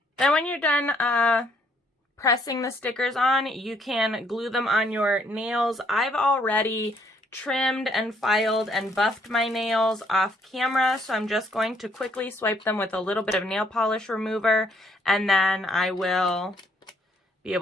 Then when you're done pressing the stickers on, you can glue them on your nails. I've already trimmed and filed and buffed my nails off camera, so I'm just going to quickly swipe them with a little bit of nail polish remover, and then I will be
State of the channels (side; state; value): both; normal; correlation 0.67